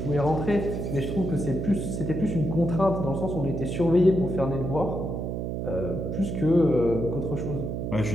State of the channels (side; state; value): right; noise; hum, 3 dB below the sound